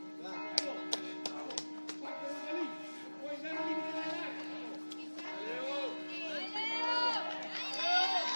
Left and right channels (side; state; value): both; inverted; correlation -1.00